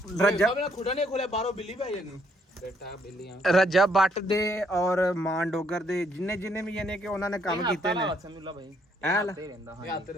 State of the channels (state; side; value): normal; both; correlation 0.69